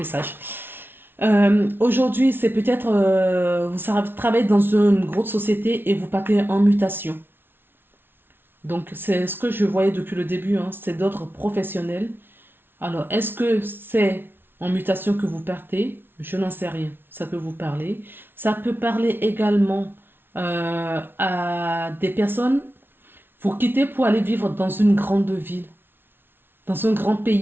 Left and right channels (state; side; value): late; left; 0.11 ms